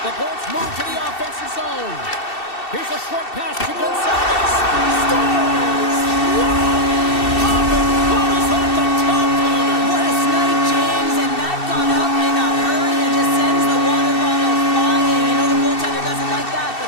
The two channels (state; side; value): late; right; 2.7 ms